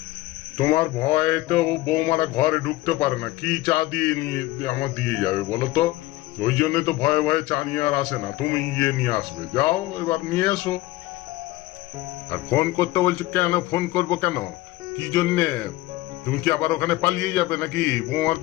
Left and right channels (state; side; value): quieter; right; 18.1 dB